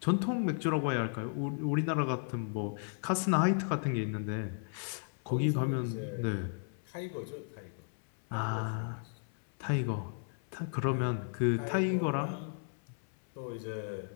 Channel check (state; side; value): silent; right; 55 dB below the other